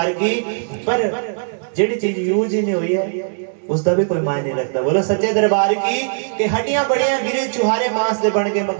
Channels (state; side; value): silent; left; digital silence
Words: की। पर जेडी चीज यूज ही नहीं हुई है उसका भी कोई मायने नहीं रखता। बोलो सच्चे दरबार की। कि हड्डियां बड़ियां गिरे चुहारे मांस दे बन के